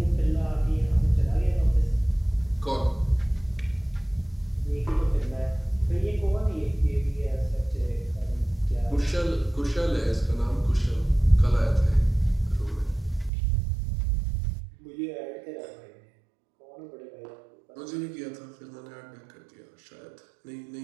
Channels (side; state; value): left; drops out; at 13.3 s